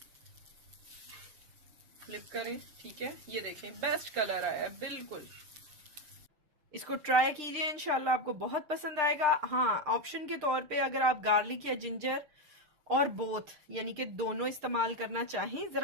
फ्लिप करें, ठीक है। ये देखें बेस्ट कलर आया है बिल्कुल। इसको ट्राई कीजिए, इंशाल्लाह आपको बहुत पसंद आएगा। हाँ, ऑप्शन के तौर पे अगर आप गार्लिक या जिंजर और बोथ यानी कि दोनों इस्तेमाल करना चाहें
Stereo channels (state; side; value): late; left; 6.6 ms